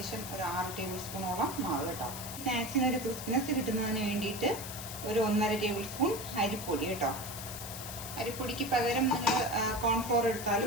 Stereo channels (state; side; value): noise; left; hiss, 9 dB below the sound